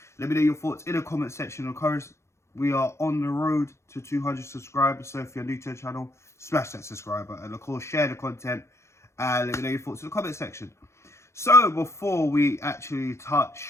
Let me know your thoughts in the comment section. Of course, we are on the road to 200 subscribers, so if you're new to the channel, smash that subscribe button and of course share the content and let me know your thoughts in the comment section. So before we actually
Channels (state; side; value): late; right; 0.13 ms